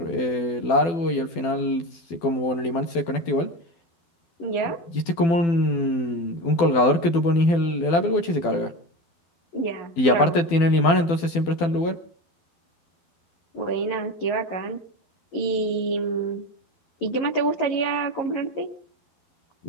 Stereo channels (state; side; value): late; right; 12 ms